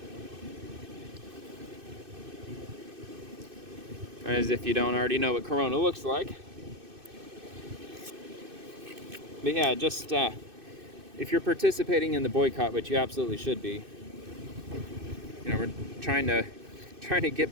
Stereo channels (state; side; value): late; left; 2.6 ms